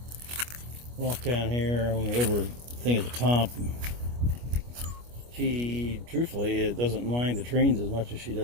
walk down here on the over thing at the top. She, truthfully, it doesn't mind the trains as much as she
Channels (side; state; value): left; late; 25 ms